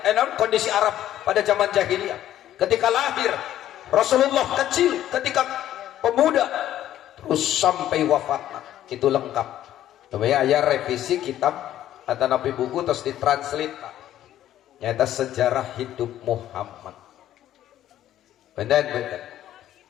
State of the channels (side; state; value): right; quieter; 12.3 dB